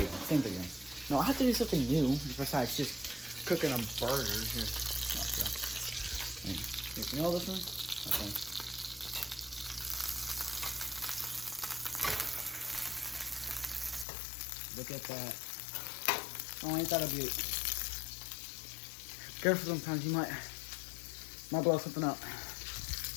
No, I have to do something new besides just cooking a burger. Here. You know this one? Okay. Look at that. Oh, ain't that a beaut? Careful, sometimes you might blow something up.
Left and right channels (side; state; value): right; drops out; at 14.1 s